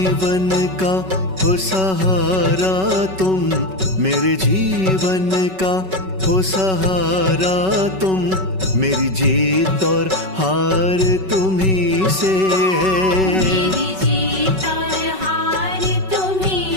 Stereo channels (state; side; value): late; left; 5.3 ms